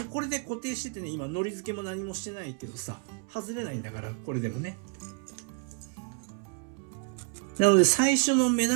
うこれで固定しててね、今のり付けも何もしてないけどさ、外れないんだから、これでもね。なので最初の目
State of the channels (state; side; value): quieter; left; 34.2 dB